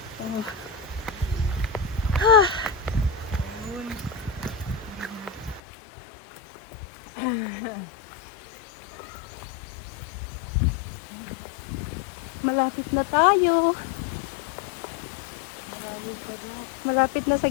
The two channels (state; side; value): drops out; right; at 5.6 s